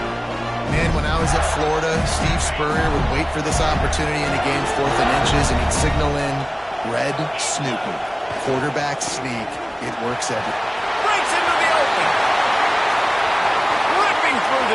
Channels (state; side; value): identical; both; correlation 1.00